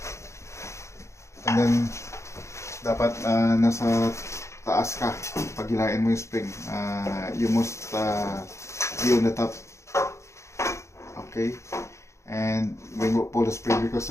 and then dapat nasa taas ka pag hilain mo yung spring. You must be on the top, okay? And when you pull the spring, because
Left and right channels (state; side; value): late; right; 0.14 ms